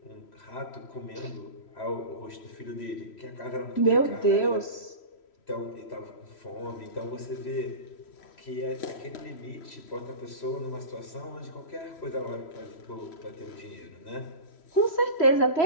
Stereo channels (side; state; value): right; late; 3.1 ms